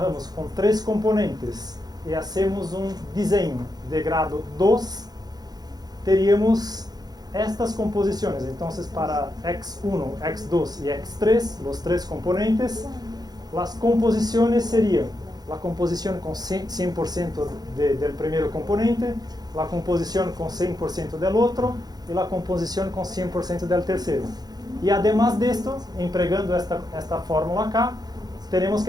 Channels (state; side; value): late; left; 0.19 ms